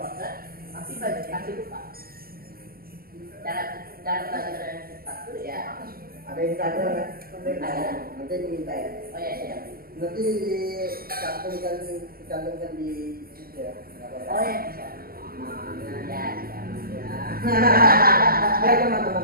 pasti banyak kasih lupa. Cara pelajaran yang cepat tuh ya. Ada Instagram kan? Nanti aku minta ya. Oh ya siap. Nanti dicantumkan di situ ya. Nggak apa-apa. Oh ya bisa. Nah, Ya siap. ya. Biar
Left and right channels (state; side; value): late; left; 0.43 ms